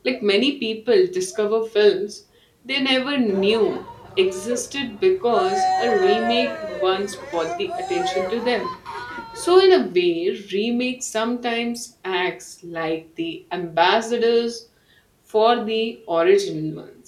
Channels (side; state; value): both; identical; correlation 1.00